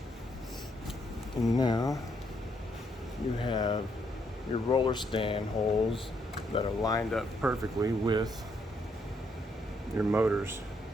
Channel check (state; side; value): normal; both; correlation 0.74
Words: And now you have your roller stand holes that are lined up perfectly with your motors